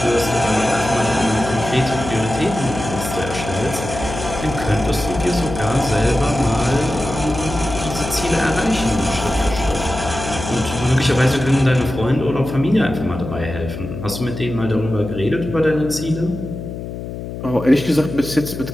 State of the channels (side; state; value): left; noise; hum, 8 dB below the sound